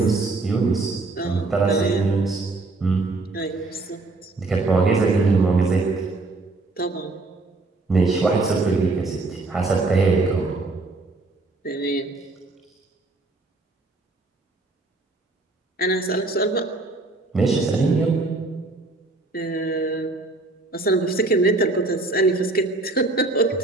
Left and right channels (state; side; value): quieter; left; 3.3 dB